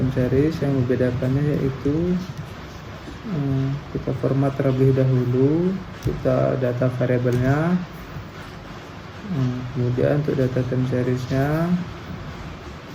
series yang membedakannya yaitu kita format terlebih dahulu, kita data variabelnya, kemudian untuk data time seriesnya,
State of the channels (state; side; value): identical; both; correlation 1.00